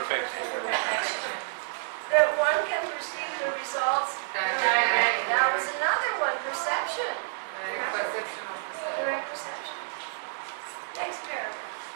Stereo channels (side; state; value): left; silent; 59 dB below the other